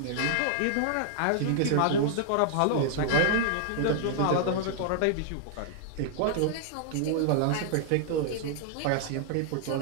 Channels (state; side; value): different; both; correlation -0.01